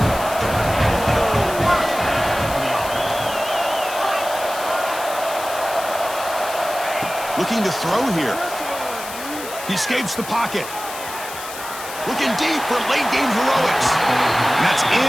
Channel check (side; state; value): left; noise; hiss, 11 dB below the sound